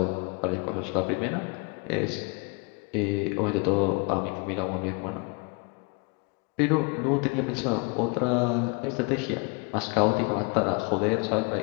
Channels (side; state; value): right; quieter; 32.8 dB